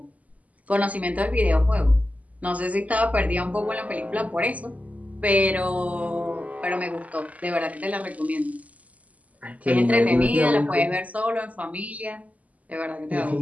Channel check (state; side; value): late; left; 0.073 ms